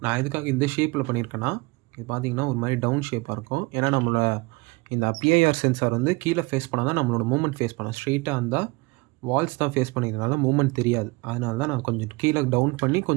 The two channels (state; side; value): quieter; left; 25.5 dB